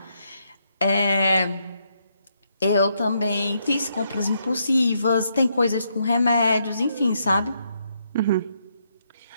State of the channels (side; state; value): both; inverted; correlation -0.77